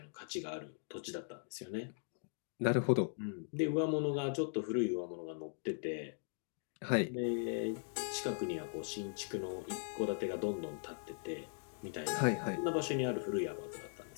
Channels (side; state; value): right; silent; digital silence